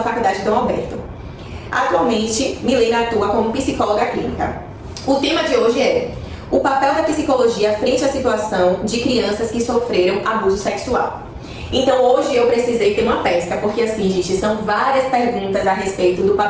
Faculdade Dom Alberto. Atualmente, Milena atua como psicóloga clínica. O tema de hoje é o papel da psicologia frente à situação de crianças que sofreram abuso sexual. Então hoje eu precisei ter uma pesca, porque assim, gente, são várias perguntas a respeito do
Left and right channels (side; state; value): both; identical; correlation 1.00